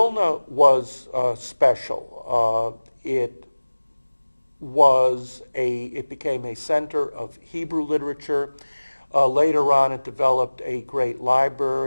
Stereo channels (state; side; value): inverted; both; correlation -1.00